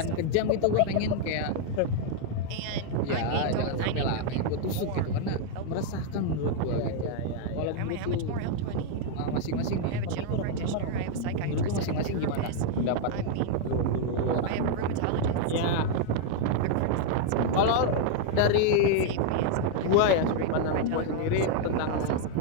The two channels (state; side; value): different; both; correlation 0.00